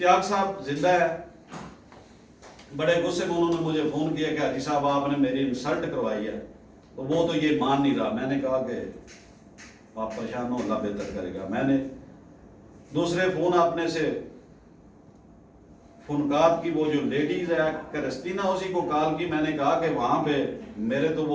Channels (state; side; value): identical; both; correlation 1.00